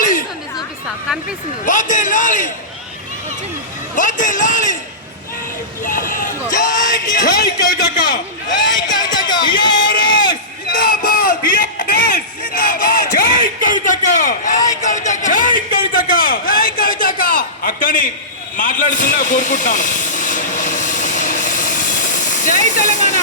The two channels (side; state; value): both; normal; correlation -0.20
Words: చూపిస్తా కనిపిస్తుంది వదిలాలి వదిలాలి జై జై కవితక్క జై కవితక్క టిఆర్ఎస్ జిందాబాద్ టిఆర్ఎస్ జిందాబాద్ జై కవితక్క జై కవితక్క జై కవితక్క జై కవితక్క అక్కని మాట్లాడుతున్నా కోరుకుంటున్నాను. జై